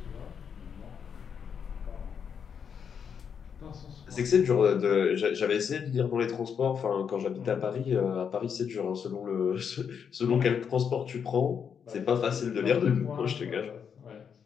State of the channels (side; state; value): right; quieter; 7.2 dB